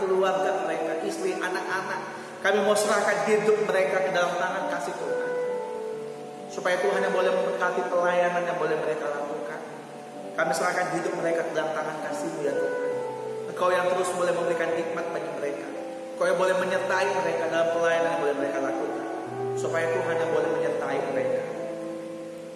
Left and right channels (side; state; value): both; identical; correlation 1.00